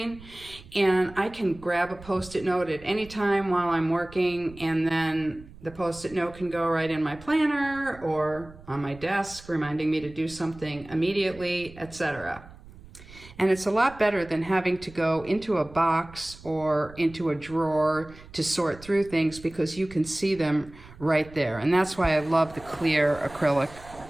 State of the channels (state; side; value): noise; right; rumble, 20 dB below the sound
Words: and I can grab a Post-it note at any time while I'm working, and then the Post-it note can go right in my planner or on my desk, reminding me to do something immediately, etc. And it's a lot better than having to go into a box or into a drawer to sort through things, because you can see them right there. And that's why I love the clear acrylic